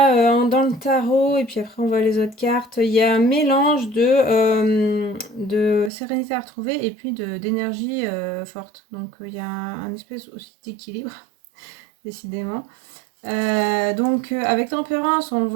dans le tarot, et puis après on voit les autres cartes, il y a un mélange de sérénité à retrouver et puis d'énergie forte. Donc, il y a un espèce aussi d'équilibre, décidément. Donc, avec tempérance, on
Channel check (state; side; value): drops out; left; at 5.9 s